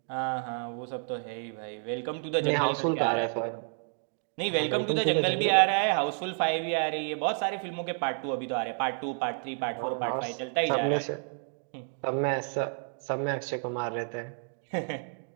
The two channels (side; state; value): left; silent; 55 dB below the other